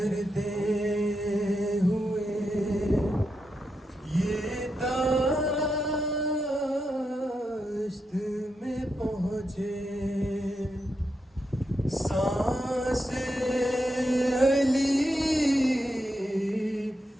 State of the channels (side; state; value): both; normal; correlation 0.85